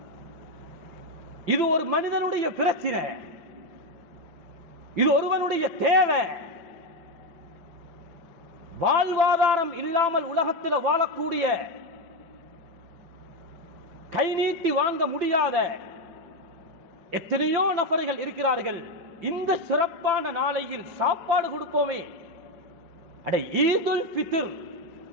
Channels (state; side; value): late; left; 5.9 ms